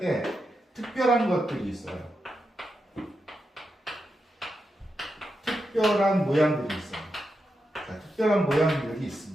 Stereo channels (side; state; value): both; normal; correlation 0.87